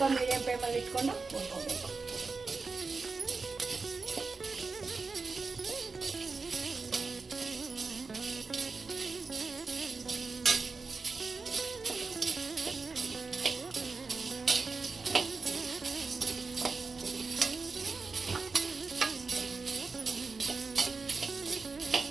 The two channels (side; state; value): left; quieter; 4.3 dB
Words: ಮೀಡಿಯಮ್ ಫ್ಲೇಮಲ್ಲಿ ಇಟ್ಕೊಂಡು ಹುರ್ಕೋಬೇಕು.